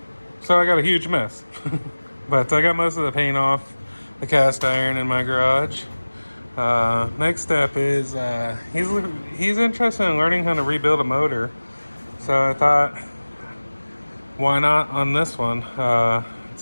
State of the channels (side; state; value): both; inverted; correlation -1.00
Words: So I got a huge mess. But I got most of the paint off the cast iron in my garage. Next step is he's interested in learning how to rebuild a motor. So I thought, why not on this one? It's